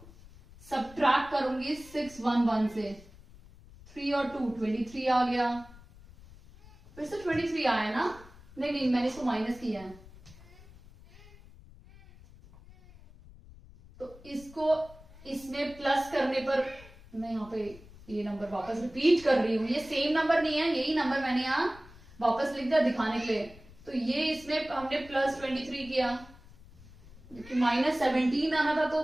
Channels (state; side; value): noise; left; rumble, 21 dB below the sound